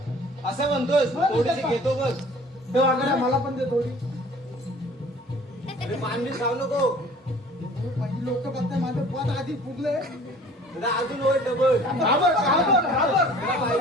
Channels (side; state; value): both; normal; correlation 0.49